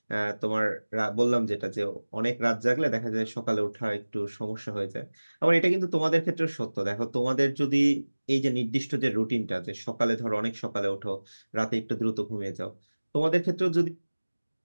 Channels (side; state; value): both; inverted; correlation -1.00